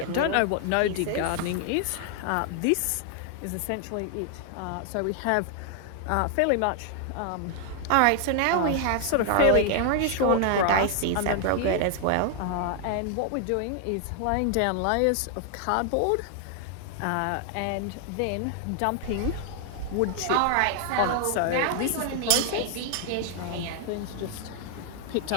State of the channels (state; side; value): different; both; correlation 0.00